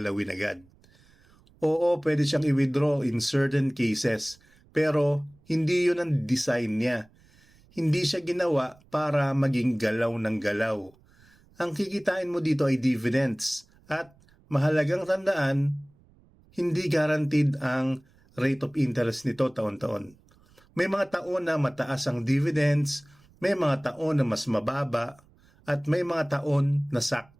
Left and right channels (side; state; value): right; noise; rumble, 30 dB below the sound